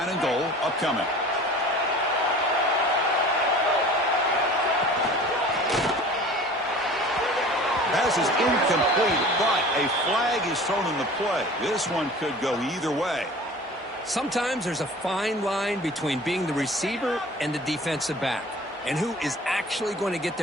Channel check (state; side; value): normal; both; correlation 0.43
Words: and goal upcoming. Pass is incomplete, but a flag is thrown in the play. This one could go either way. Sometimes there's a fine line between being the receiver and the defensive back, and who is actually going to get